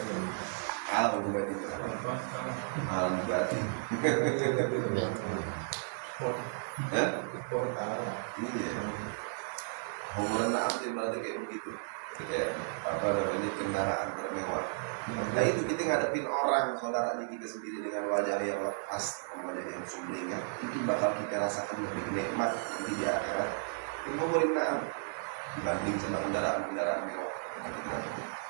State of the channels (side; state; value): left; silent; digital silence